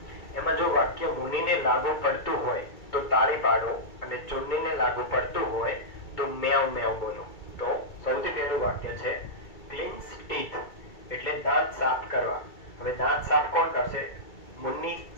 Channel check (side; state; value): right; late; 2.3 ms